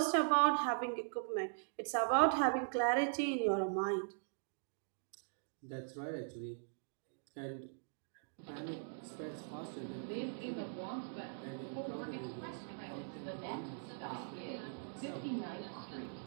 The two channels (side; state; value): left; silent; digital silence